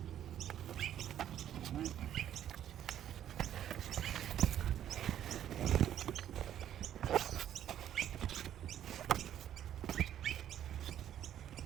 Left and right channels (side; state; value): left; quieter; 10.8 dB